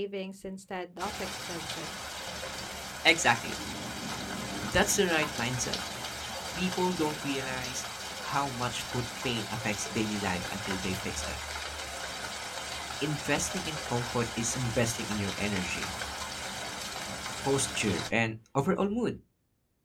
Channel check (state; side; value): identical; both; correlation 1.00